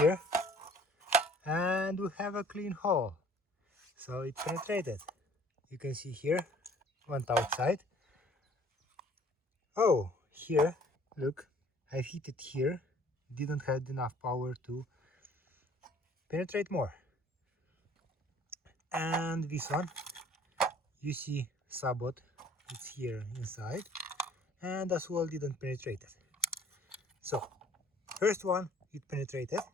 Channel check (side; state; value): both; normal; correlation 0.55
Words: and we have a clean hole, so it penetrated. You can see here, went outside. Oh, here, look, I hit it here, didn't have enough power to penetrate more. And this one, you see sabot, it's here inside, and as well didn't penetrate it. So first one, it penetrated.